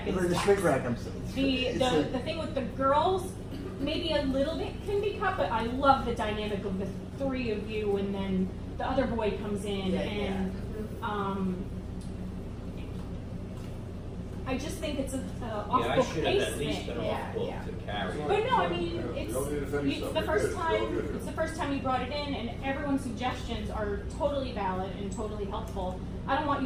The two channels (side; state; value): both; identical; correlation 1.00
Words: Like the shrink wrap, I'm saying. The thing with the girls, maybe a little bit can be cut, but I love the dynamic of the 3 of you, and then the other boy comes in, and I just think it's a off Yeah, I book should have pace at least thing. been off book to carry. But no, I mean, You it's don't need to defend it's yourself. the You're first good. You're all time. good. It's the first time you brought it in, and everyone's suggestions are totally valid and totally helpful. I don't want